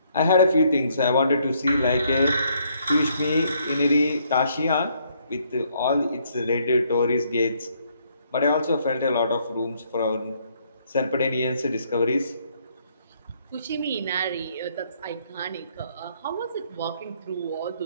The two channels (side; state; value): both; inverted; correlation -0.69